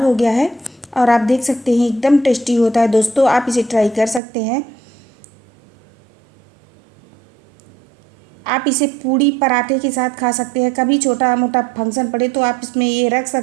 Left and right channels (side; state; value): left; drops out; at 4.2 s